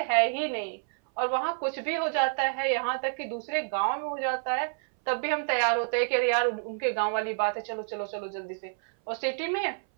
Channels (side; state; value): left; silent; 59 dB below the other